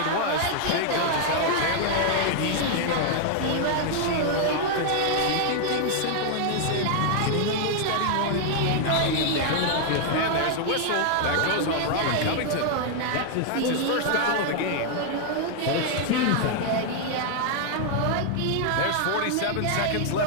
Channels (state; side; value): different; both; correlation 0.00